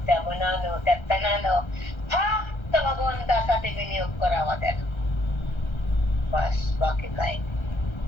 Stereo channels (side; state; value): right; late; 1.3 ms